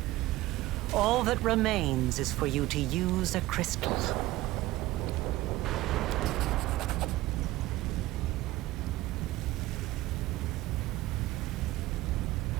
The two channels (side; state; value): left; quieter; 17.4 dB